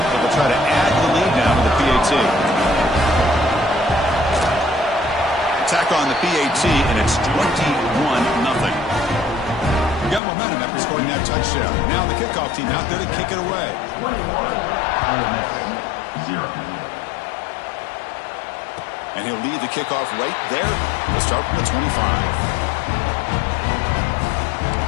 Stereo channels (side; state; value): right; drops out; at 10.2 s